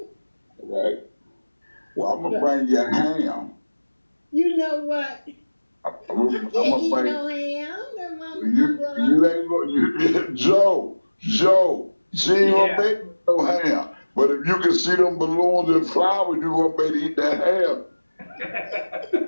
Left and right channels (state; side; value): inverted; both; correlation -1.00